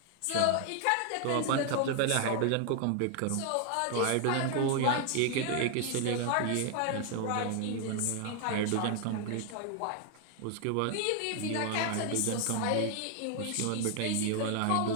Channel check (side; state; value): both; different; correlation 0.00